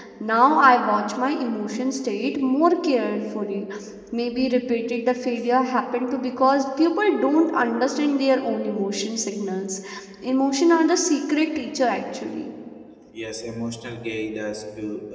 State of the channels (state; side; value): identical; both; correlation 1.00